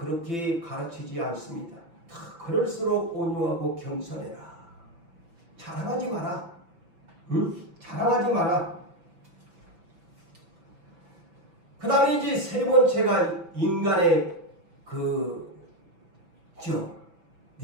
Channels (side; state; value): left; late; 6.0 ms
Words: 가르치지 않습니다. 그럴수록 온유하고 겸손해라. 자랑하지 마라. 자랑하지 마라. 그 다음에 이제 세 번째가 인간의